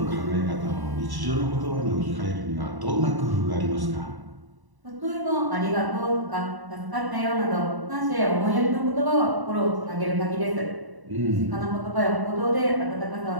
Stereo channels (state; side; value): late; left; 1.0 ms